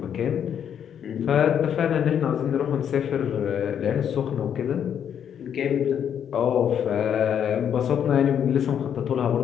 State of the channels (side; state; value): right; quieter; 8.7 dB